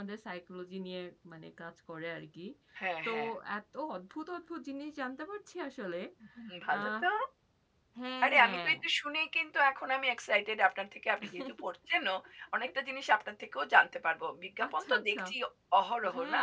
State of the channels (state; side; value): identical; both; correlation 1.00